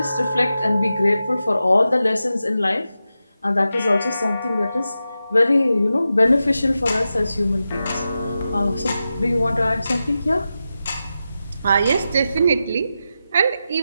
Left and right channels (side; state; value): both; inverted; correlation -0.91